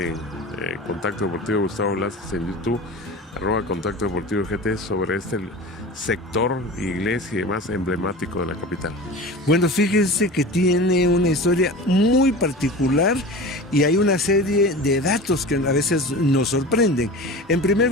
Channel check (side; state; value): both; normal; correlation 0.34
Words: en Contacto Deportivo Gustavo Velázquez en YouTube, @Contacto Deportivo GT, sobre este sector, iglesia y demás emblemático de la capital? Bueno, fíjense que tiene una historia muy particular y hay una serie de datos que a veces nos sorprenden. En primer